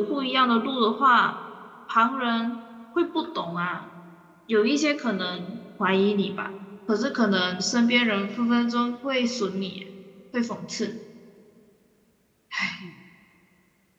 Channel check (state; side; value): identical; both; correlation 1.00